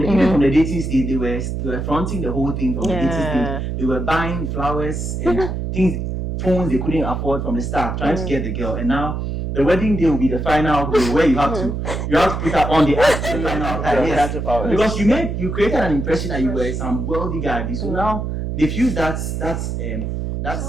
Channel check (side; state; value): right; noise; hum, 3 dB below the sound